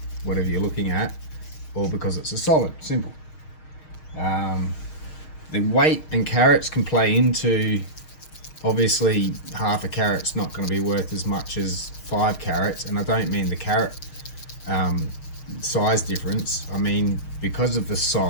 whatever you're looking at, or because it's a solid. Simple. The weight and carats can play into, obviously half a carat's not going to be worth as much as 5 carats, and I don't mean the carat size difference. I mean because of the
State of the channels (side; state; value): right; late; 6.4 ms